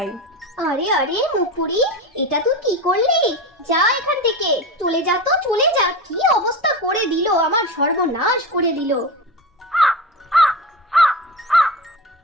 আরে আরে মুখপুরি, এটা তুই কি করলি? যা এখান থেকে, চলে যা তো, চলে যা। কি অবস্থা করে দিল, আমার সর্বনাশ করে দিল।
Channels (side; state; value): both; normal; correlation 0.25